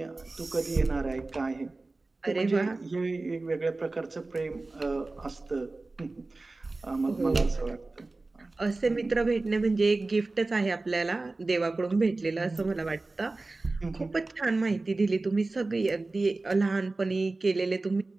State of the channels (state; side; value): quieter; left; 3.3 dB